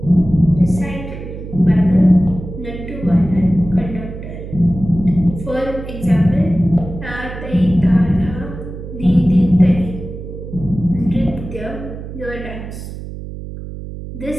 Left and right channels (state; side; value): noise; right; hum, 10 dB below the sound